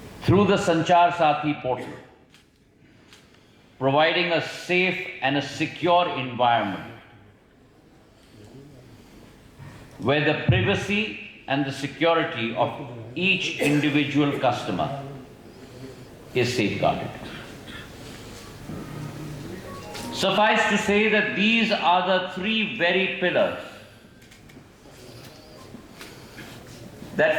through the SANCHAR SATHI portal, providing a safe and a secure environment where the privacy and the security of each individual customer is safeguarded. Suffice to say that these are the three very pillars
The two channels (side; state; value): both; identical; correlation 1.00